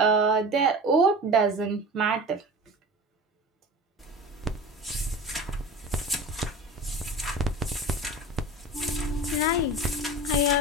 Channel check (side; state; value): both; normal; correlation 0.34